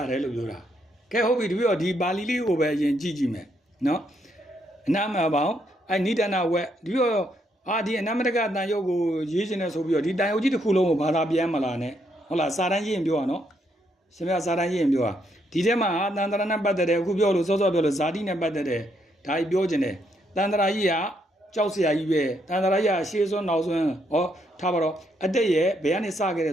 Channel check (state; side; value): normal; both; correlation 0.75